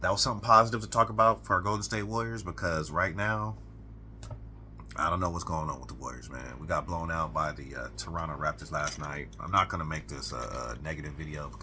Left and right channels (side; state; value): both; identical; correlation 1.00